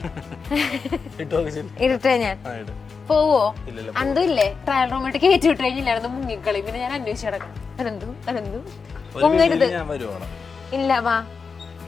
ഇരട്ടെ ഞാൻ പോവോ? അന്തും ഇല്ലേ ട്രയൽ റൂമിട്ട് കയറ്റി വിട്ട് കഴിഞ്ഞില്ലായിരുന്നു മുങ്ങിക്കളി. പിന്നെ ഞാൻ അന്വേഷിച്ച് കിടക്കാം. അനന്തു മുങ്ങരുത്. ഇല്ല വാ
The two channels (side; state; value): right; quieter; 5.2 dB